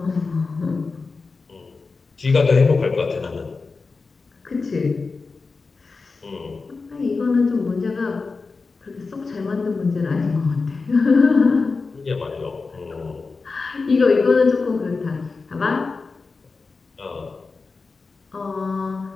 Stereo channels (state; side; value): quieter; right; 4.2 dB